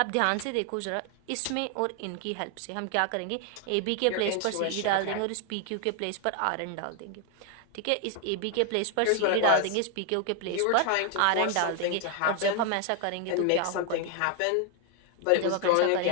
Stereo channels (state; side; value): different; both; correlation 0.01